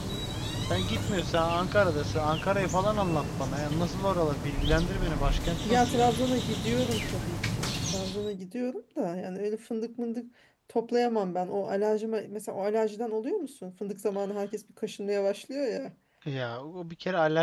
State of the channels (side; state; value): both; identical; correlation 1.00